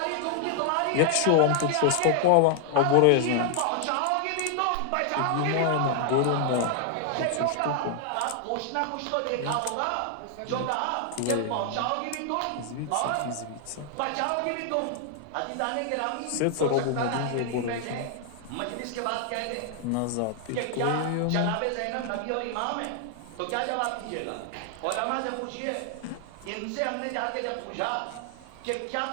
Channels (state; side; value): different; both; correlation 0.00